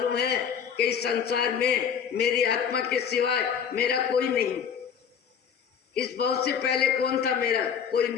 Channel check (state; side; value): quieter; right; 7.5 dB